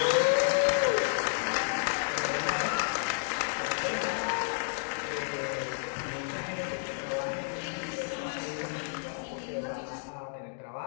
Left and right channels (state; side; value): silent; right; digital silence